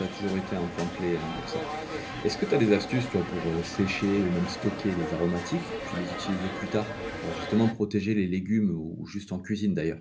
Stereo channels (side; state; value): both; identical; correlation 1.00